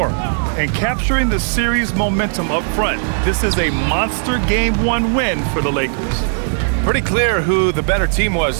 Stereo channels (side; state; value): left; silent; 68 dB below the other